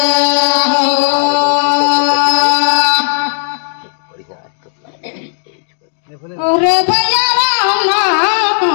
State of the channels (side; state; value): right; silent; digital silence